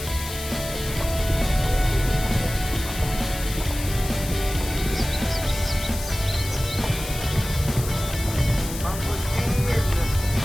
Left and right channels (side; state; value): left; noise; hiss, 10 dB below the sound